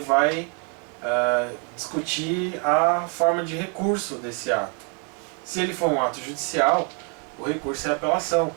discutir a forma de recurso desse ato. Se ele for um ato judicial, o recurso é a apelação.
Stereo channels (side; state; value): left; quieter; 37.8 dB